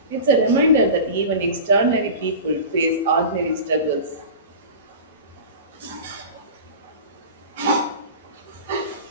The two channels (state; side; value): inverted; both; correlation -0.32